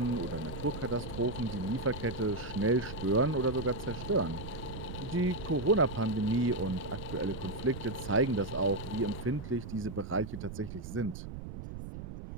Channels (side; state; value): right; noise; rumble, 9 dB below the sound